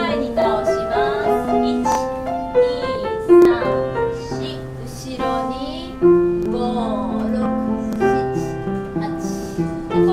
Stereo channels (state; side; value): identical; both; correlation 1.00